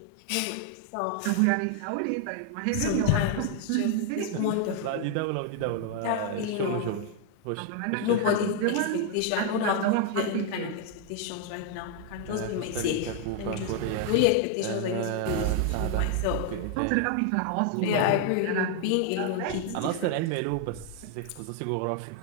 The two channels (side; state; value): both; different; correlation 0.00